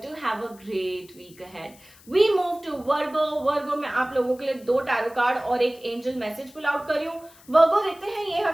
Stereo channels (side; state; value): left; noise; hiss, 25 dB below the sound